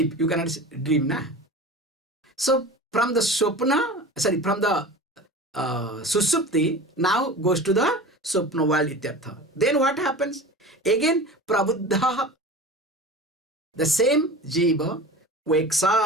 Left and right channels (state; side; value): normal; both; correlation 0.35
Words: you cannot dream, na? So from the swapna, from the susupti, now goes to the swapna world, ityartha. Then what happens? Again, prabuddha, the same jiva, wakes